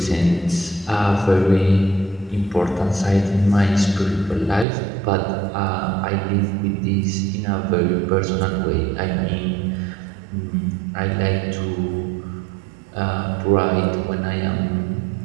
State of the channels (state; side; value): drops out; left; at 4.7 s